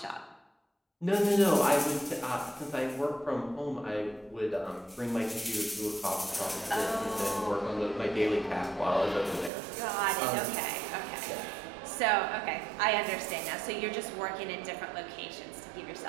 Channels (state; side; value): drops out; left; at 9.5 s